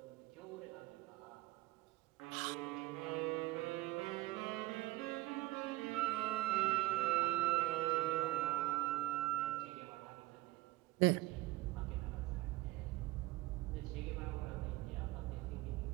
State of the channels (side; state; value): left; quieter; 18.3 dB